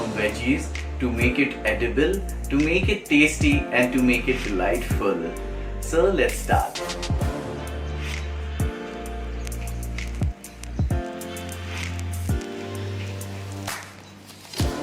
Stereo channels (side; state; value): both; identical; correlation 1.00